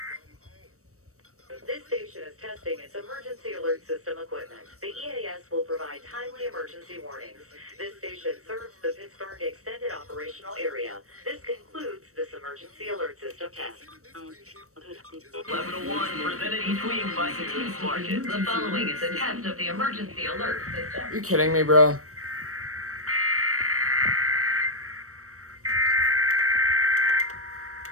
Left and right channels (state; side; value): late; left; 0.65 ms